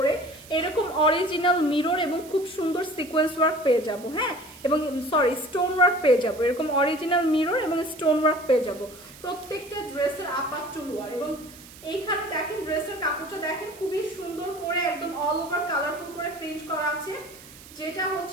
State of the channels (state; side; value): noise; right; hiss, 19 dB below the sound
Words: এরকম অরিজিনাল মিরর এবং খুব সুন্দর সিকোয়েন্স ওয়ার্ক পেয়ে যাব, হ্যাঁ এবং সরি স্টোন ওয়ার্ক পেয়ে যাব, এরকম অরিজিনাল মিরর এবং স্টোন ওয়ার্ক পেয়ে যাব প্রত্যেকটা ড্রেসের আপার টু লোয়ার। এবং এইখানে দেখেন ড্রেসের কাপড়টা দেখেন খুবই সুন্দর করে একদম অল ওভার কালারফুল করে প্রিন্ট করা আছে, যেটা